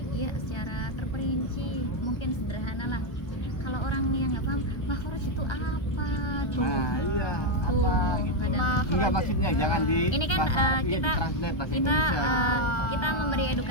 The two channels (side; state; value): right; late; 1.2 ms